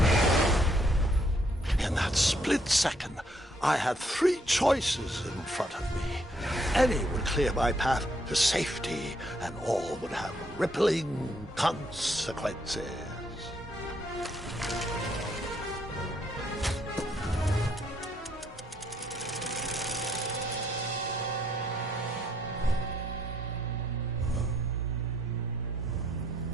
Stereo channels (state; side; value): normal; both; correlation 0.71